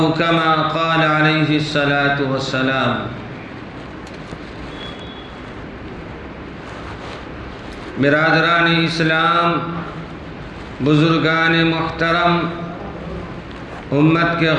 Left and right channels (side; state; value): both; identical; correlation 1.00